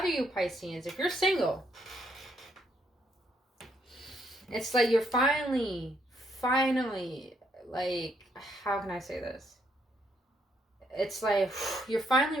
you Pisceans, if you're single, it's like you're finally, like, how can I say this? It's like you're finally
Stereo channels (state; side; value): normal; both; correlation 0.74